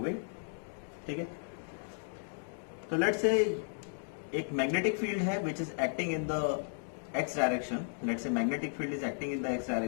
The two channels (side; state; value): right; silent; digital silence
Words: ठीक है, तो let's say एक magnetic field है which is acting in the x direction. Let's say magnetic field is acting in the x